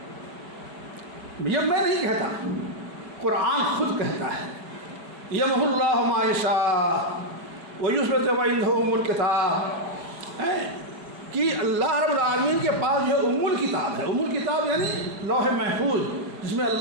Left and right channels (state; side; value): late; left; 4.9 ms